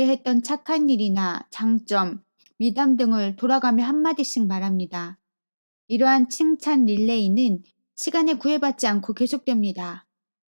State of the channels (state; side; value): inverted; both; correlation -1.00